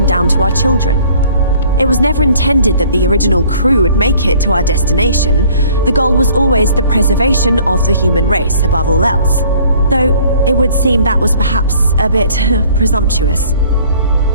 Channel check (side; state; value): both; inverted; correlation -0.54